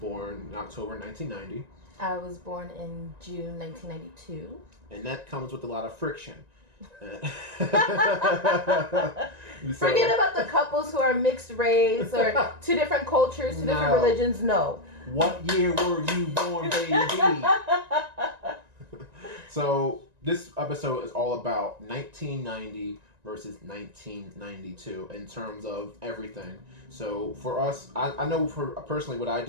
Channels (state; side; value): late; left; 1.9 ms